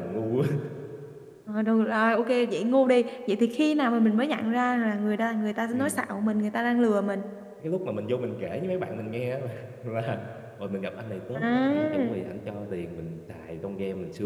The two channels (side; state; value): both; identical; correlation 1.00